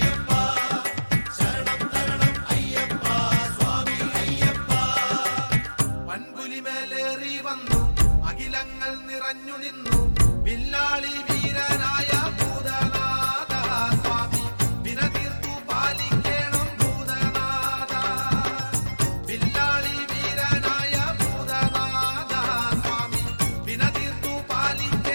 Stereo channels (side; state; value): both; inverted; correlation -1.00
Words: ശരണം തരണം അയ്യപ്പ സ്വാമി അയ്യപ്പ വൻപുലിമേലേറി വന്നു അഖിലങ്ങൾ നിറഞ്ഞു നിന്നു വില്ലാളി വീരനായ ഭൂതനാഥ സ്വാമി വിനതീർത്തു പാലിക്കണം ഭൂതനാഥ വില്ലാളി വീരനായ ഭൂതനാഥ സ്വാമി വിനതീർത്തു